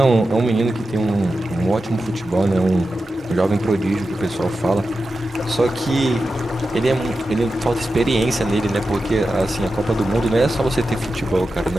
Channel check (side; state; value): both; normal; correlation 0.91